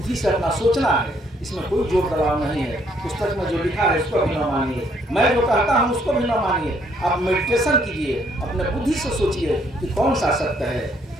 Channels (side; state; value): both; normal; correlation 0.68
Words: से अपना सोचना है, इसमें कोई जोर दबाव नहीं है। पुस्तक में जो लिखा है उसको भी न मानिए, मैं जो कहता हूँ उसको भी न मानिए। आप मेडिटेशन कीजिए, अपने बुद्धि से सोचिए कि कौन सा सत्य है।